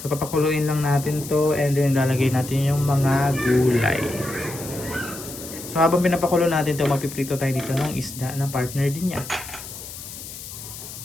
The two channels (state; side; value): noise; left; hiss, 12 dB below the sound